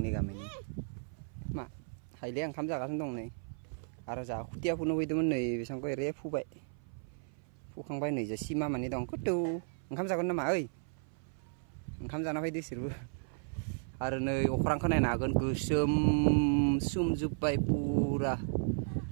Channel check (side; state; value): left; silent; 55 dB below the other